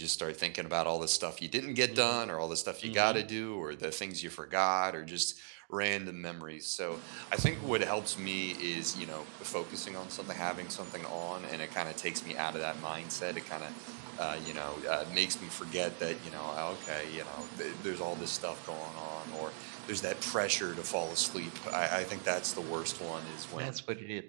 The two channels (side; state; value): left; silent; digital silence